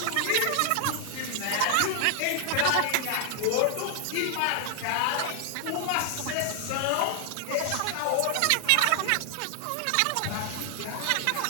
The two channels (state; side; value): different; both; correlation 0.00